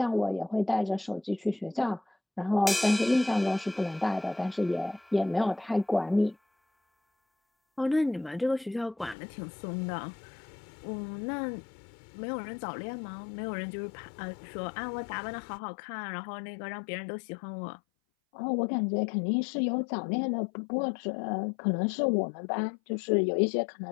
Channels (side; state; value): right; drops out; at 9.2 s